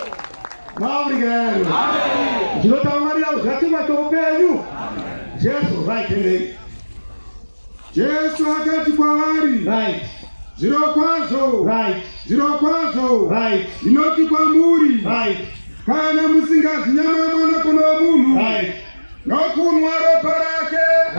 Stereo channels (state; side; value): inverted; both; correlation -1.00